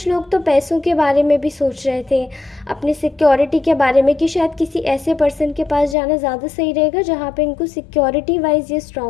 लोग तो पैसों के बारे में भी सोच रहे थे, अपनी सिक्योरिटी के बारे में कि शायद किसी ऐसे पर्सन के पास जाना ज़्यादा सही रहेगा जहाँ पे इनको सिक्योरिटी वाइज ये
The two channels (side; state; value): right; drops out; at 6.0 s